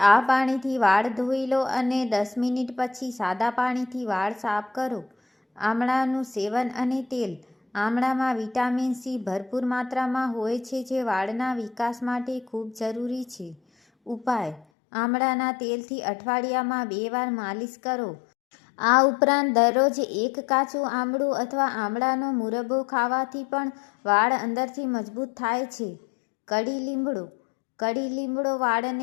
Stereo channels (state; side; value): drops out; right; at 14.7 s